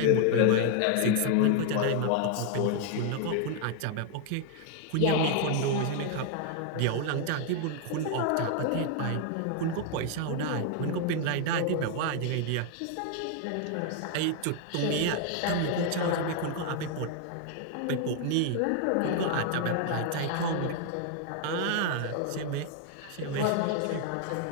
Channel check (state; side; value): different; both; correlation 0.00